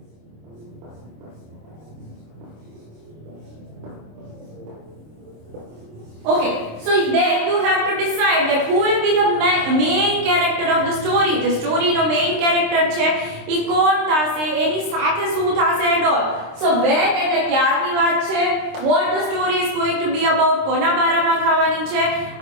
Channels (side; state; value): left; late; 26 ms